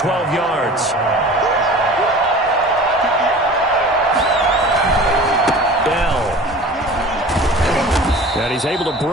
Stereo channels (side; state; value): both; normal; correlation 0.41